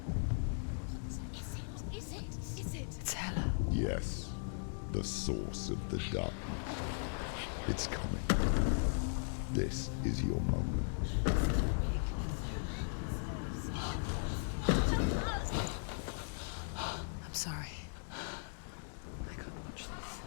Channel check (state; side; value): silent; right; digital silence